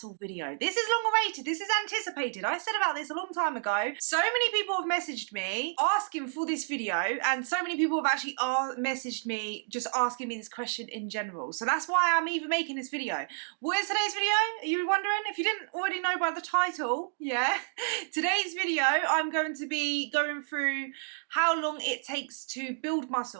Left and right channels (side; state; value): left; silent; digital silence